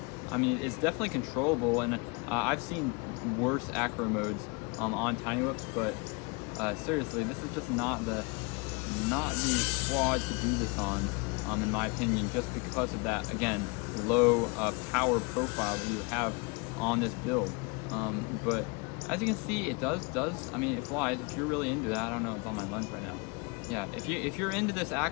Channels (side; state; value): right; quieter; 30.2 dB